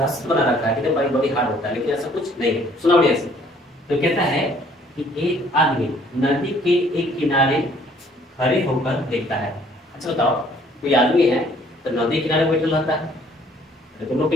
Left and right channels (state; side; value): normal; both; correlation 0.60